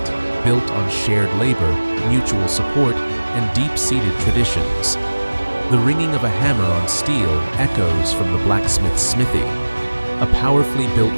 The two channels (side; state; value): both; inverted; correlation -1.00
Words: built on shared labor, mutual support, and deep-seated traditions. The ringing of a hammer on steel echoes from the blacksmith's smithy. A powerfully built